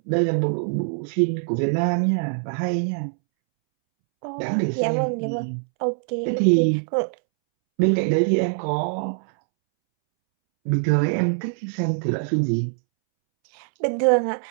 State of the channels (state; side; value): silent; left; 63 dB below the other